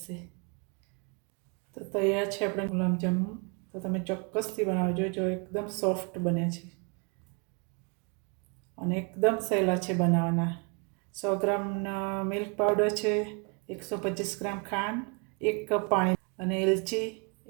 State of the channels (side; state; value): left; quieter; 33.4 dB